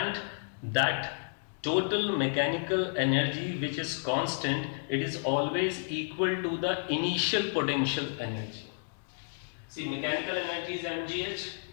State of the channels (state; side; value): silent; right; digital silence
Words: that total mechanical energy which is constant, it is always equal to the initial potential energy. See, mechanical energy is mgh,